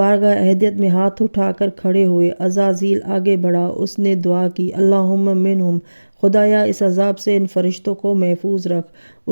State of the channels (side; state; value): both; inverted; correlation -1.00